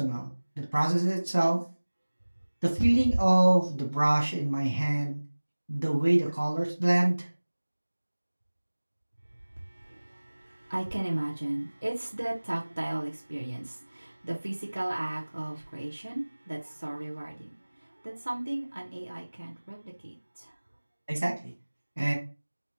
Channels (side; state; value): both; inverted; correlation -1.00